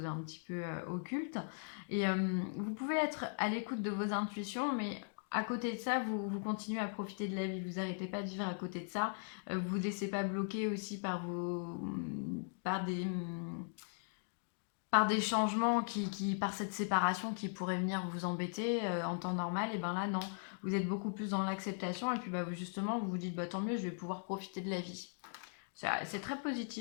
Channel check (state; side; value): silent; right; digital silence